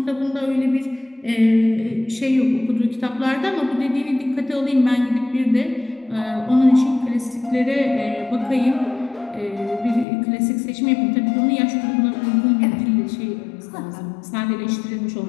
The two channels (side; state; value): right; drops out; at 10.1 s